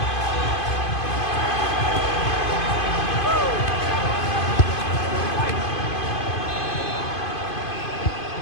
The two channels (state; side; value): late; right; 2.5 ms